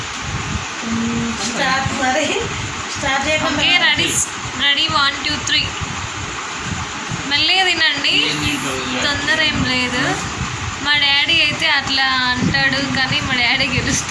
స్టార్ట్ చేయకుండా రెడీ 1 2 3 మెల్లగా తినండి, తొందర ఏం లేదు. మా డాడీ అయితే అట్లా అంటాడు కానీ మా డాడీ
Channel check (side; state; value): both; identical; correlation 1.00